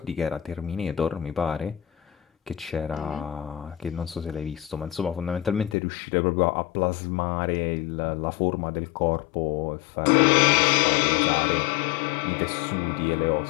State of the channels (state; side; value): drops out; right; at 5.8 s